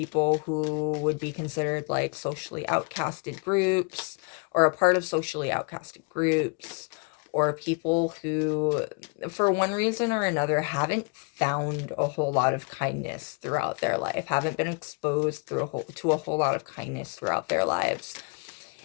who would be considered like socially outcasted groups, or a part of socially outcasted groups, or people who, for one reason or another, haven't found a whole lot of kindness throughout their life, haven't been exposed to a whole lot of kindness throughout their lives.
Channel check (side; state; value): right; quieter; 34.9 dB